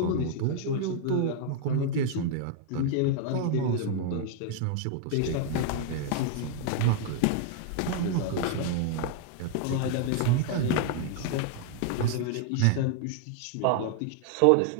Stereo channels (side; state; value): both; different; correlation 0.00